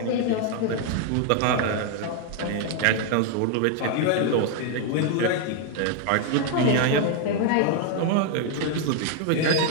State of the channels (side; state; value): both; different; correlation 0.00